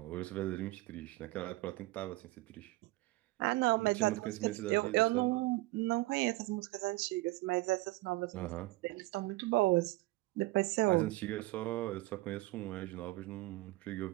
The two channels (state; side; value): quieter; left; 20.1 dB